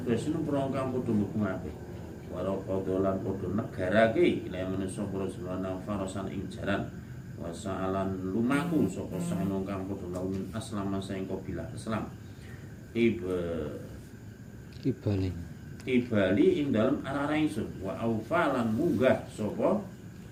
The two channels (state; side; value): identical; both; correlation 1.00